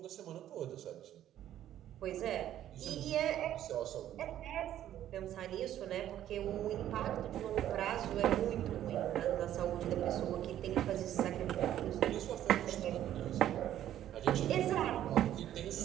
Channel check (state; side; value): quieter; left; 11.8 dB